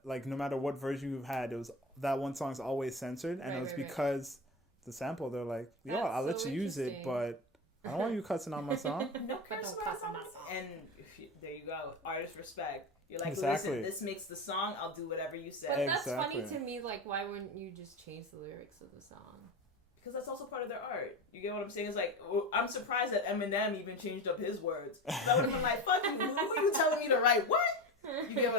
Like no matter what version you've had, it was that one song's always censored, and it was because the sample. They're like, "Yo, That's I'll let so you use it, but I don't want you cussing on my song." No But curse don't words cuss on on my my song. And there you go, artist respect. You're like, Exactly. listen, this makes the song. I'll do whatever you say. But that's funny Exactly. to me. Like, why wouldn't you just change the lyrics of the song? Because that's also part of their art. You get what I'm saying? It's like, I'm surprised that Eminem even changed up his words. That would have been like, fuck you, who are you telling me to write what? You get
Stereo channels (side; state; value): both; normal; correlation 0.24